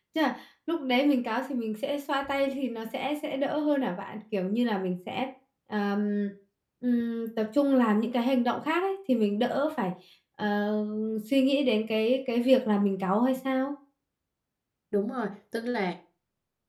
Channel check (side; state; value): both; identical; correlation 1.00